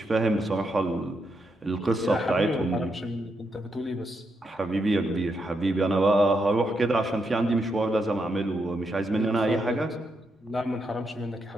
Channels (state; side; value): normal; both; correlation 0.81